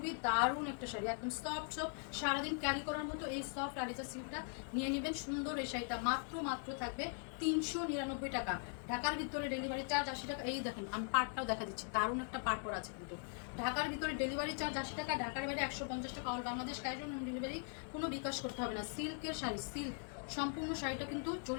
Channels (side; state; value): right; silent; 51 dB below the other